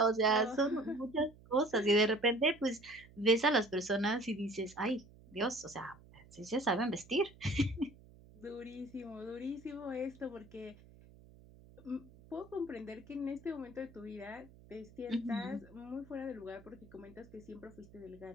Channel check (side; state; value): right; noise; hum, 22 dB below the sound